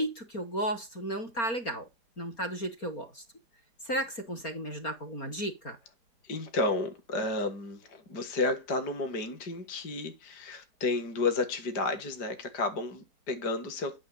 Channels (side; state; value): right; late; 4.3 ms